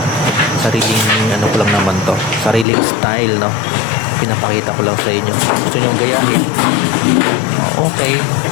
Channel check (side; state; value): right; drops out; at 2.7 s